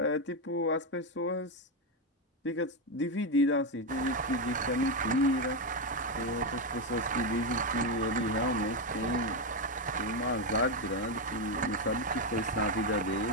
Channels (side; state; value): both; normal; correlation 0.07